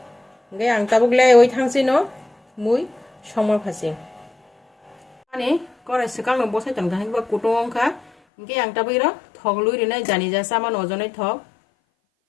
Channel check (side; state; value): right; drops out; at 8.1 s